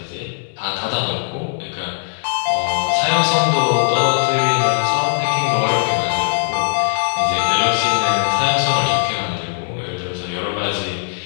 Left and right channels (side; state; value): right; silent; digital silence